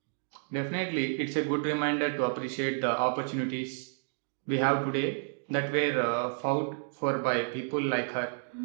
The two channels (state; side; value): silent; left; digital silence